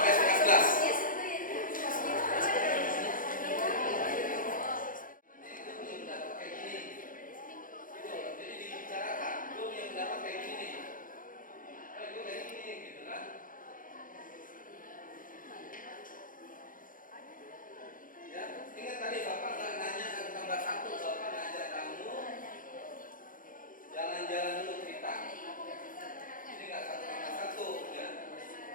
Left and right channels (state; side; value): late; right; 0.40 ms